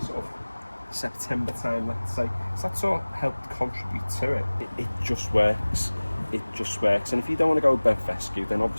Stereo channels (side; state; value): both; inverted; correlation -1.00